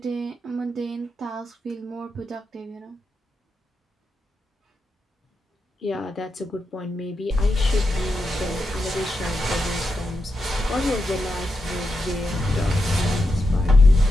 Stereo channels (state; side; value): normal; both; correlation 0.87